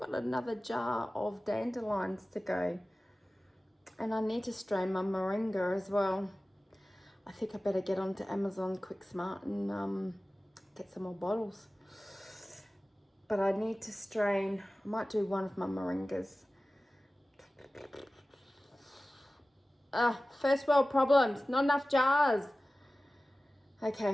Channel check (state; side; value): normal; both; correlation 0.96